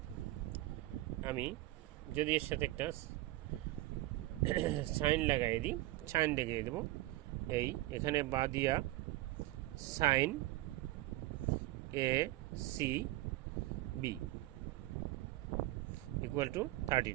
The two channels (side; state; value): left; quieter; 17.9 dB